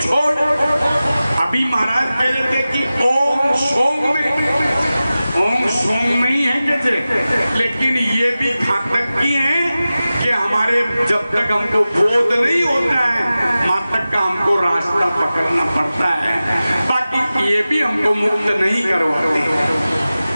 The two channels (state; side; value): inverted; both; correlation -0.95